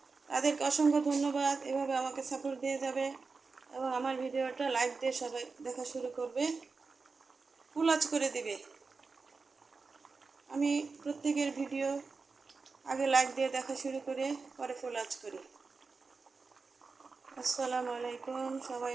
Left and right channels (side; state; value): left; quieter; 4.4 dB